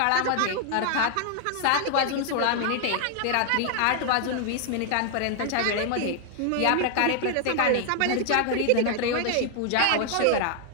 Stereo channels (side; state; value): both; different; correlation 0.00